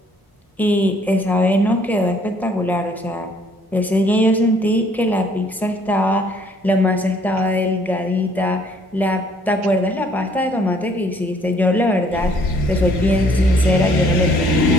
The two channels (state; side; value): normal; both; correlation 0.62